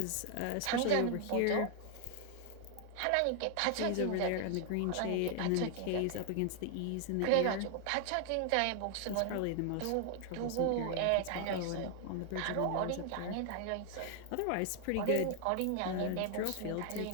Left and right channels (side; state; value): both; different; correlation 0.00